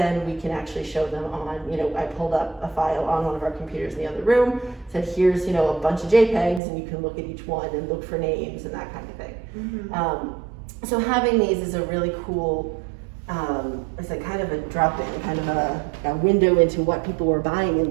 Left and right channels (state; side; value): drops out; left; at 6.6 s